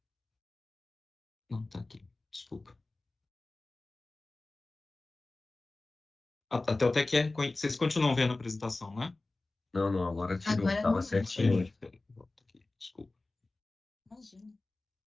Não, tá aqui, desculpa. A Teutec vocês continuam vendo a apresentação, né? Não, agora tirou. Agora Tava não. certinho. Peraí, volta aqui, desculpa. Imagina.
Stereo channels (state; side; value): quieter; right; 3.2 dB